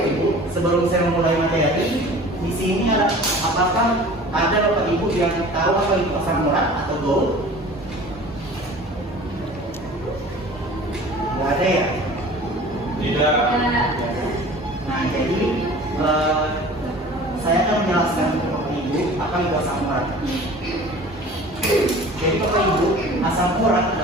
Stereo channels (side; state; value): both; normal; correlation 0.43